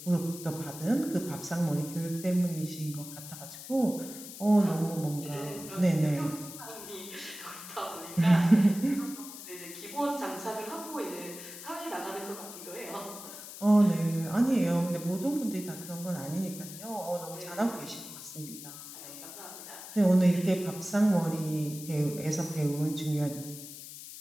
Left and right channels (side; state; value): left; noise; hiss, 12 dB below the sound